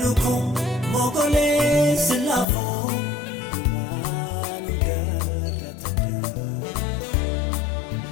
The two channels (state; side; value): drops out; right; at 2.5 s